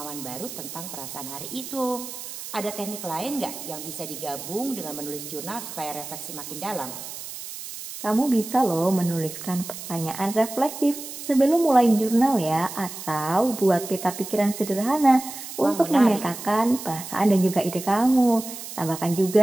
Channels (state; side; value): noise; right; hiss, 10 dB below the sound